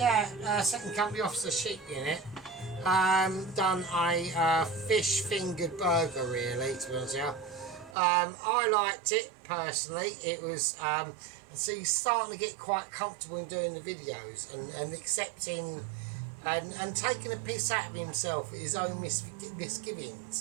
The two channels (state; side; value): drops out; left; at 8.0 s